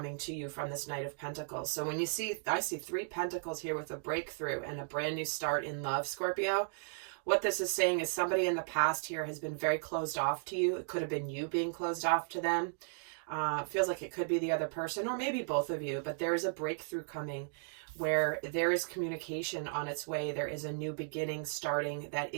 to you from this Knight of Pentacles. So when you see, I see 3 pentacles here with a breakthrough and a brand new start in love, Scorpio. What this is saying is somebody in the past here has been very closed off to you. It could have been you being closed off to them. Feels like it could be the other person, or maybe both of you, but there is a breakthrough coming where there is communication on its way. There is a new beginning starting that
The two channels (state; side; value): silent; left; digital silence